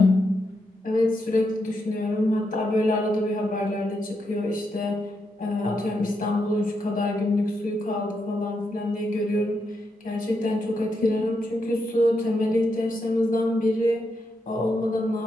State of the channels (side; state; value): both; normal; correlation 0.82